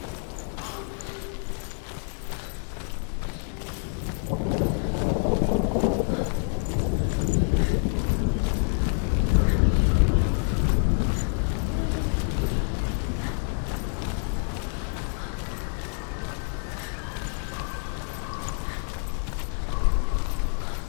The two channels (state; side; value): silent; right; 60 dB below the other